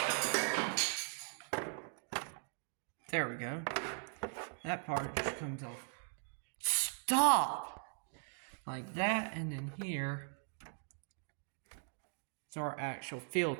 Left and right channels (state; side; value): silent; left; 51 dB below the other